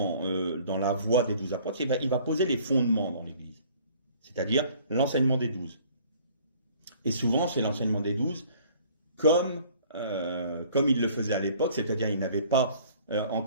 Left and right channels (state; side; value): inverted; both; correlation -0.55